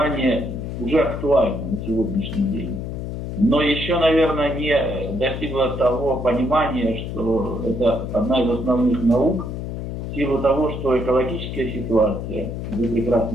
уже актуальна на сегодняшний день. Но еще, наверное, не достигла того понимания, что это одна из основных наук, в силу того, что экологическая ситуация, вы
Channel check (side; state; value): left; noise; hum, 6 dB below the sound